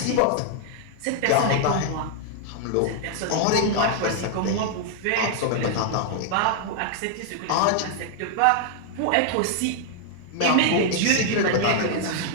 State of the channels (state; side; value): different; both; correlation 0.00